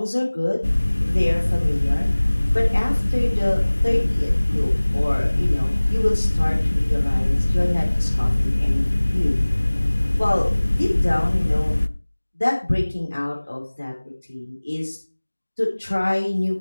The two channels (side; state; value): both; inverted; correlation -1.00